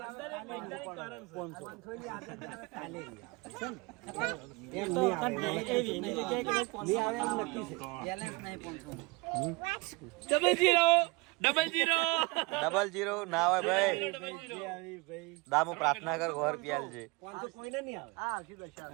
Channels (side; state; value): left; quieter; 25.3 dB